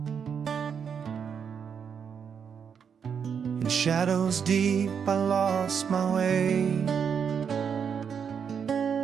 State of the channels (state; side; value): quieter; left; 7.1 dB